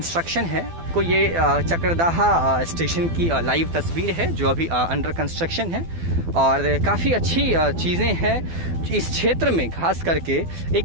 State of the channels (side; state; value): left; late; 12 ms